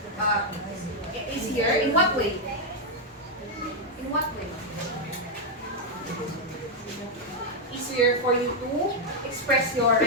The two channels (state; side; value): normal; both; correlation -0.02